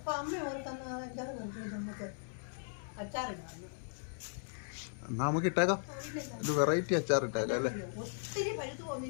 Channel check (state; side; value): silent; right; digital silence